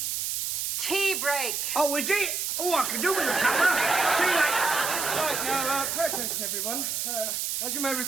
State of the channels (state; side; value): noise; right; hiss, 1 dB below the sound